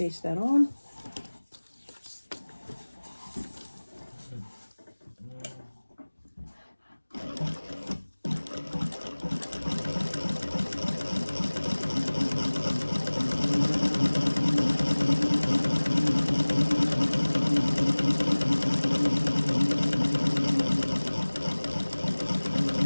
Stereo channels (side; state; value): both; inverted; correlation -1.00